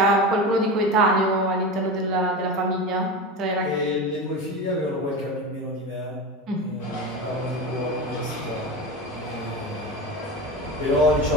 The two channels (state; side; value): normal; both; correlation 0.24